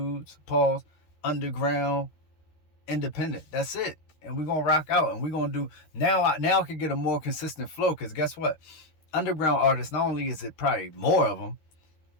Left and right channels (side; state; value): right; late; 13 ms